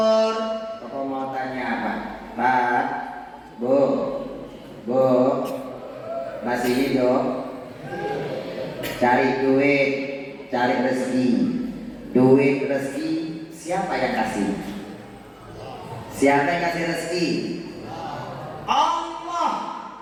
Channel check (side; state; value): both; identical; correlation 1.00